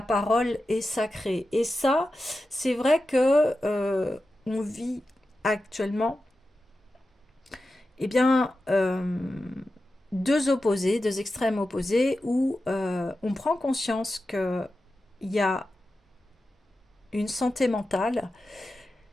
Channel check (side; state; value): both; normal; correlation 0.92